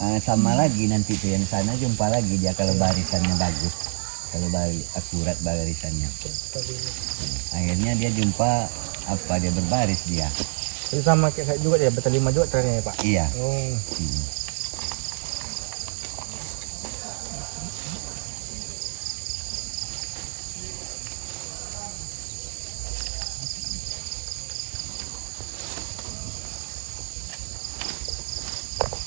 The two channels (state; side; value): silent; left; digital silence